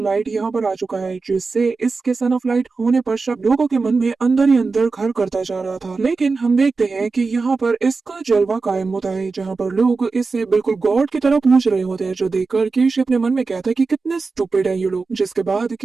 यहाँ पर आ चुका है, जिससे इसके सन ऑफ लाइट होने पर लोगों के मन में अंदर ही अंदर घर करता जा रहा था। लेकिन हम देखते हैं कि यहाँ पर इसका जलवा कायम होता है, जहाँ पर लोग इससे बिल्कुल गॉड की तरह पूछ रहे होते हैं, जो देखकर कीशी अपने मन में कहता है कि कितने स्टूपिड है ये लोग। जिसके बाद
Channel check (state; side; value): quieter; left; 4.2 dB